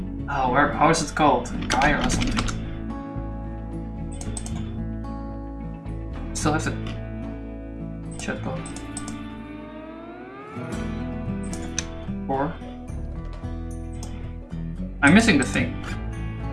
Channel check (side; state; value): both; identical; correlation 1.00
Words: Oh, how is it called? Gaia or something? Still have the chatbot. Or I'm missing the thing.